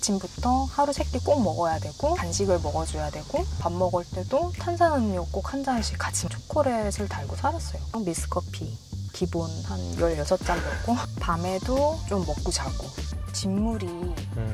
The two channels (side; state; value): both; identical; correlation 1.00